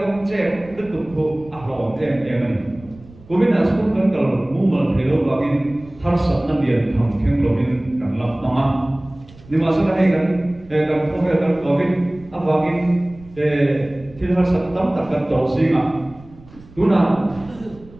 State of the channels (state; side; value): noise; right; rumble, 22 dB below the sound